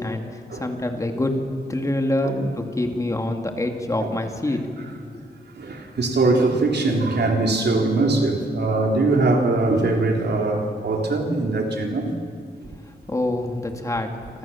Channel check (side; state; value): both; normal; correlation 0.66